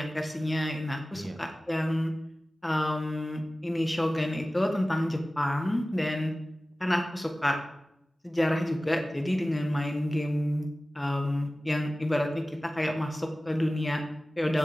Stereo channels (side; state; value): both; normal; correlation 0.97